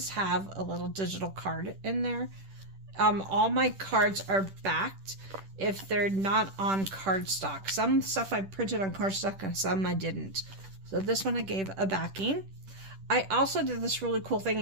have a little digital card in there. All my cards are backed if they're not on cardstock. Some stuff I printed on cardstock and some I didn't. So this one I gave a backing. I also did this really cool thing,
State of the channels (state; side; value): late; left; 10 ms